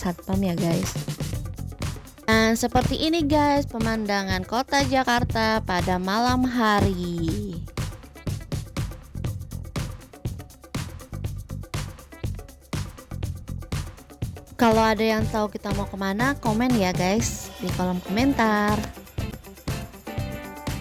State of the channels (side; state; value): both; identical; correlation 1.00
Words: ya guys. Dan seperti ini guys pemandangan kota Jakarta pada malam hari. Kalau ada yang tahu kita mau kemana, komen ya guys di kolom komentar.